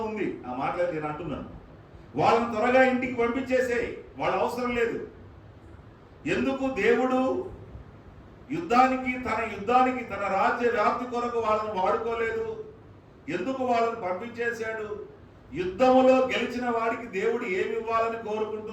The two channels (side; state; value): both; identical; correlation 1.00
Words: ఉంది. ఆ మాటలు నేను అంటున్నాను. వాళ్ళని త్వరగా ఇంటికి పంపించేసేయి, వాళ్ళ అవసరం లేదు. ఎందుకు దేవుడు యుద్ధానికి తన రాజ్య వ్యాప్తి కొరకు వాళ్ళని వాడుకోలేదు? ఎందుకు వాళ్ళని పంపించేశాడు? యుద్ధములో గెలిచిన వాడికి దేవుడు ఏమి ఇవ్వాలని